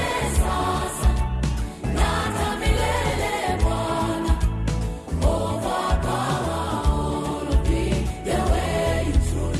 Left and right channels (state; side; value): identical; both; correlation 1.00